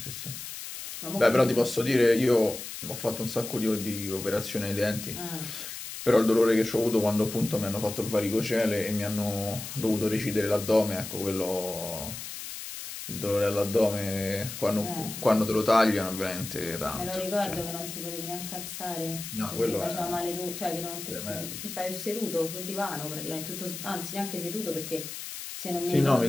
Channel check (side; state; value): left; noise; hiss, 9 dB below the sound